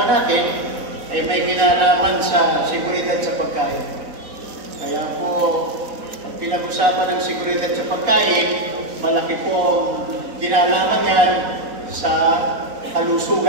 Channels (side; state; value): left; late; 4.0 ms